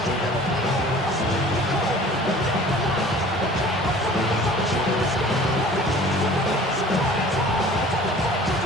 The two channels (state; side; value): normal; both; correlation 0.47